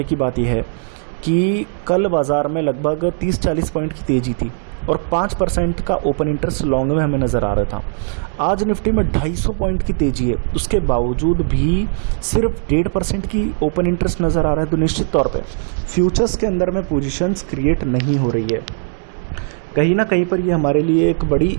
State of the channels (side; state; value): left; silent; 67 dB below the other